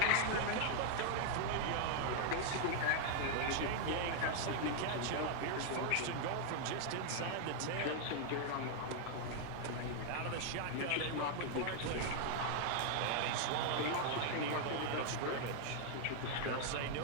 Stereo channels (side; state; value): both; different; correlation 0.00